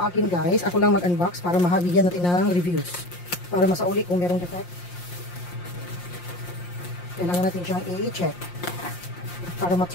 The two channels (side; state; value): right; late; 5.7 ms